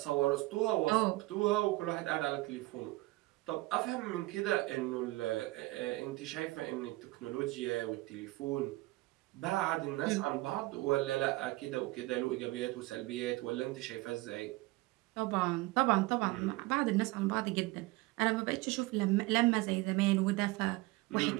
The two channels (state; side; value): quieter; left; 20.8 dB